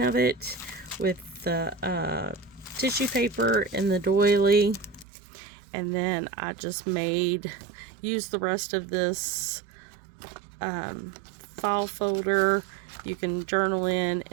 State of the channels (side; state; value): left; drops out; at 5.1 s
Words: of it with the tissue paper and the doily. And then I just used the rest of this file folder. You can journal in,